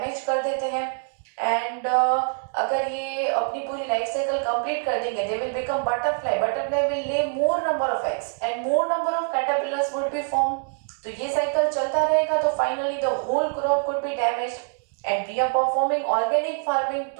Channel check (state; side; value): silent; left; 60 dB below the other